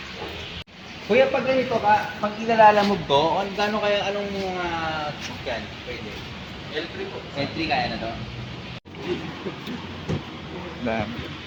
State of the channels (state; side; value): identical; both; correlation 1.00